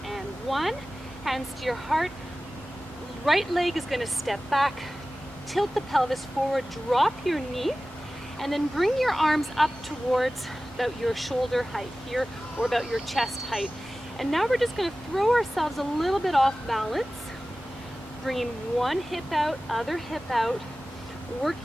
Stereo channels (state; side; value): normal; both; correlation 0.96